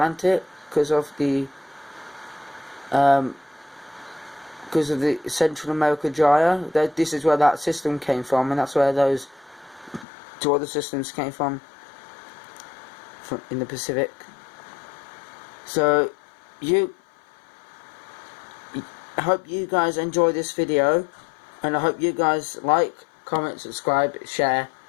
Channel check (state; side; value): drops out; right; at 10.1 s